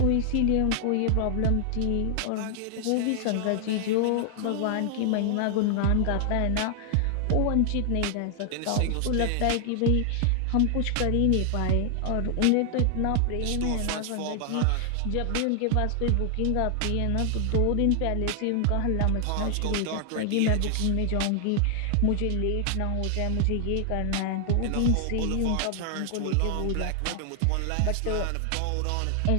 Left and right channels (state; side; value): different; both; correlation 0.00